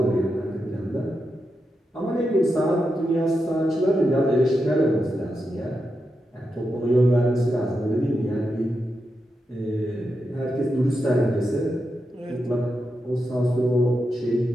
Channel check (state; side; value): normal; both; correlation 0.87